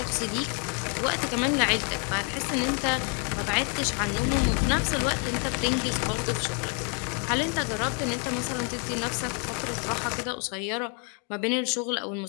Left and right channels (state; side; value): quieter; right; 38.9 dB